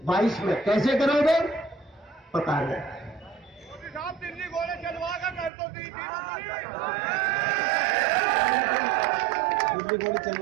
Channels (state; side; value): drops out; left; at 5.5 s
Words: 22 में, कैसे करोगे पता नहीं। दिल्ली घोड़े चलवा कर कर दो, दिल्ली घोड़े